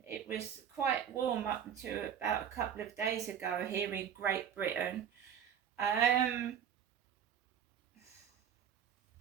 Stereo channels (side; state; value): left; quieter; 8.8 dB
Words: It was quite warm up until about a couple of days ago here in Great Britain.